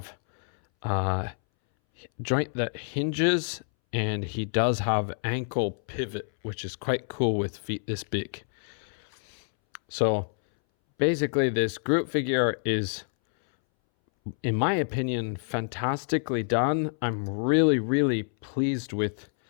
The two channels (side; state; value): right; silent; 60 dB below the other